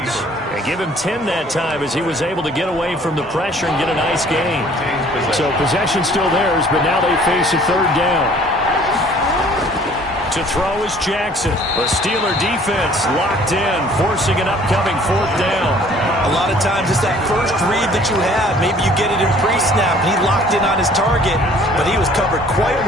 And give him 10 that time as he was able to get away from the pressure and get a nice gain. So possession still theirs, but now they face a third down. To throw is Jackson. The Steeler defense locked in, forcing an upcoming fourth down. A lot of times it's that first read that you have. Maybe you get it in pre-snap, and he locked in on his target, but he was covered quite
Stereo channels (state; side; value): normal; both; correlation 0.55